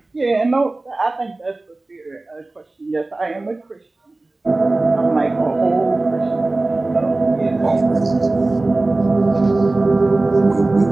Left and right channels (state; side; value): quieter; left; 3.1 dB